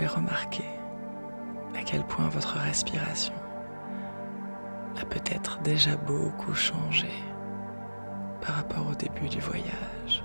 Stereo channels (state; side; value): inverted; both; correlation -1.00